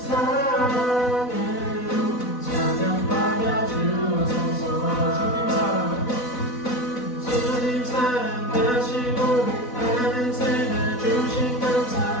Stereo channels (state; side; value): late; right; 4.0 ms